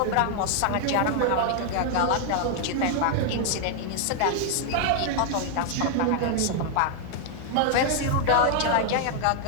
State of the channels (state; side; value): different; both; correlation 0.00